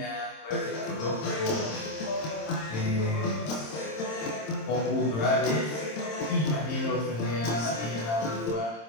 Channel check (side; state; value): right; late; 26 ms